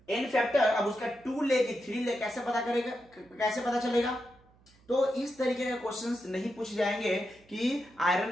N factor अब उसका 2 ले कि 3 ले कैसे पता करेगा, कैसे पता चलेगा? तो इस तरीके के क्वेश्चंस नहीं पूछे जाएंगे कि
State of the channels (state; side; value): noise; right; hum, 30 dB below the sound